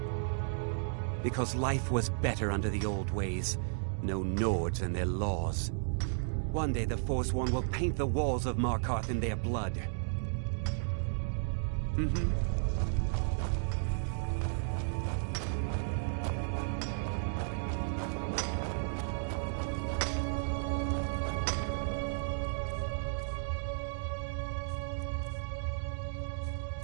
Because life was better under the old ways. No Nords and their laws. One day the Forsworn will paint the walls of Markarth in their blood.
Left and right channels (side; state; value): left; silent; digital silence